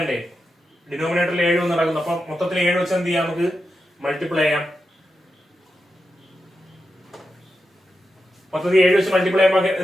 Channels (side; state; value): both; normal; correlation 0.88